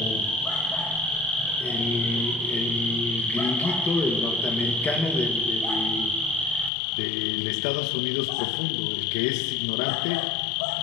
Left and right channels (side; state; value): right; drops out; at 6.7 s